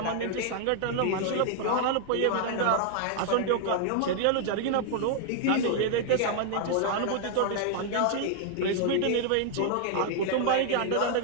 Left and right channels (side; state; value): both; different; correlation 0.00